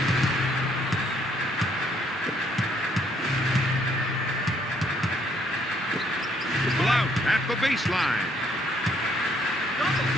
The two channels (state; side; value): normal; both; correlation 0.68